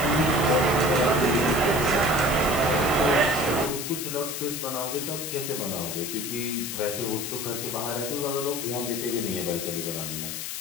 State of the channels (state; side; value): noise; left; hiss, 5 dB below the sound